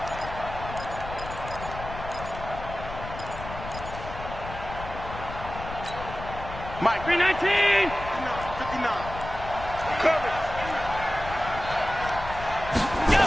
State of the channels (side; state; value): left; noise; rumble, 10 dB below the sound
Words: Mike. 319. 59. Coming.